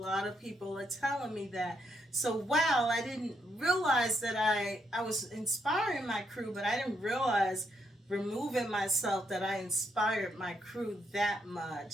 of people are telling me that. So wow, I didn't realize that I was inspiring my crew, but I didn't realize removing myself that I inspired my crew that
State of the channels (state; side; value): normal; both; correlation 0.77